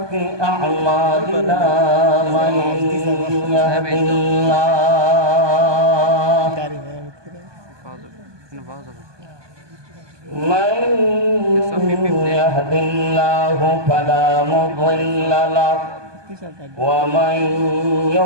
أعمالنا من يهد الله فلا مضل له ومن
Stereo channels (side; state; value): left; late; 1.2 ms